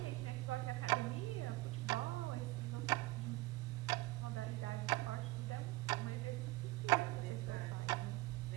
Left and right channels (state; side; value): quieter; left; 19.6 dB